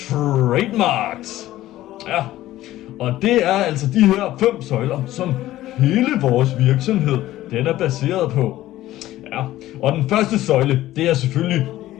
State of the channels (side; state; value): right; quieter; 15.0 dB